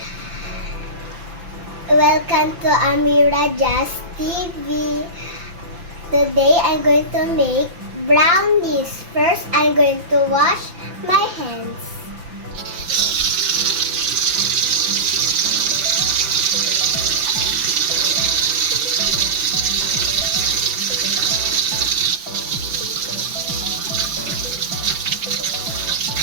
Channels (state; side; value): late; left; 5.9 ms